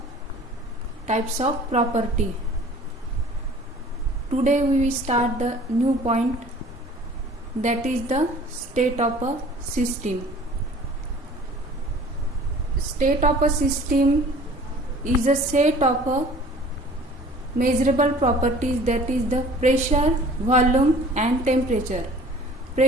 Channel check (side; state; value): both; normal; correlation 0.48